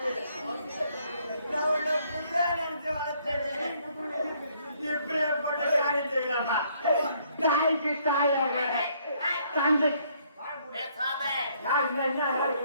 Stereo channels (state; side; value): inverted; both; correlation -0.67